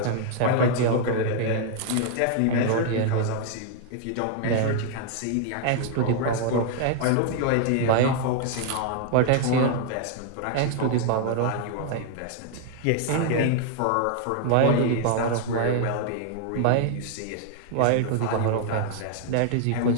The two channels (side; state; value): both; different; correlation 0.00